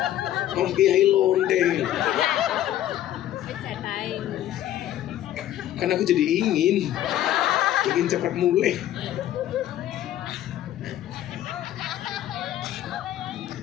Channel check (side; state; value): right; quieter; 12.6 dB